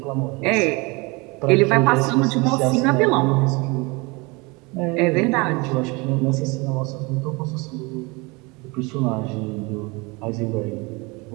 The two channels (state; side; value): quieter; left; 26.6 dB